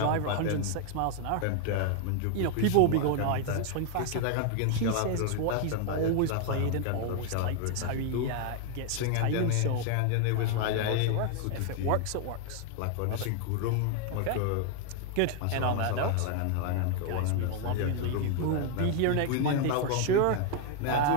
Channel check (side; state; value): both; different; correlation 0.00